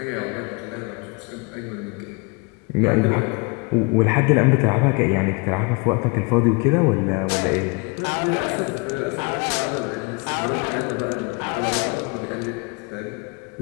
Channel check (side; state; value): right; quieter; 31.3 dB